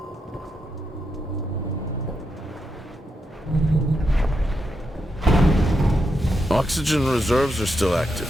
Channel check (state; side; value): normal; both; correlation 0.84